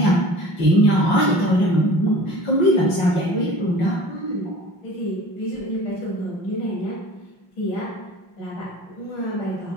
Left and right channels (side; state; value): right; late; 5.6 ms